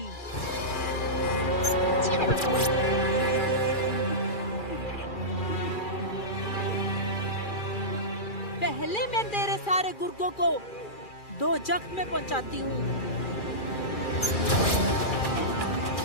पहले मैं तेरे सारे गुर्गों को 2 जख्म में पहुंचाती हूँ।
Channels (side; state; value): right; late; 2.4 ms